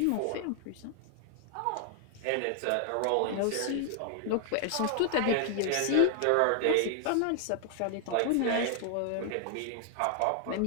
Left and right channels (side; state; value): both; different; correlation 0.00